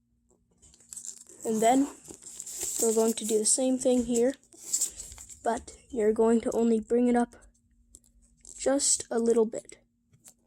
And then, we're going to do the same thing here, but you're going to only bring it up just a little bit.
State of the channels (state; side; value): identical; both; correlation 1.00